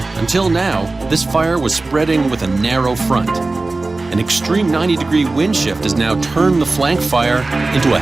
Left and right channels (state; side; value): quieter; left; 3.3 dB